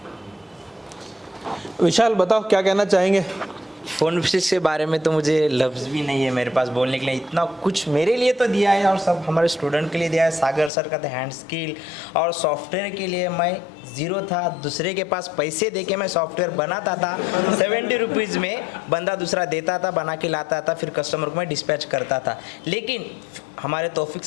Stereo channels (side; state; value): right; drops out; at 10.7 s